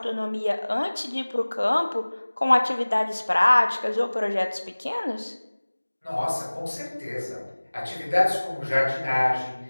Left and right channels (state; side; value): inverted; both; correlation -1.00